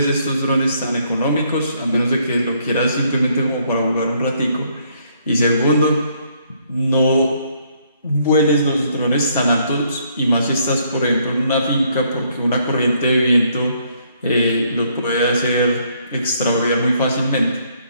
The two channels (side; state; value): both; inverted; correlation -0.69